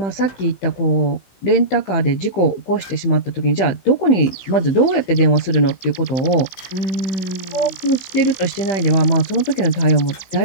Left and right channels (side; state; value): right; late; 16 ms